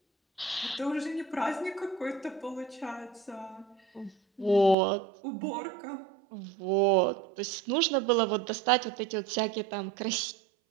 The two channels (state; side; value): drops out; left; at 4.8 s